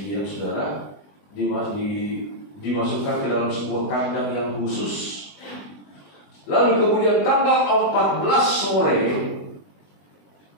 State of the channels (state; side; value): late; right; 20 ms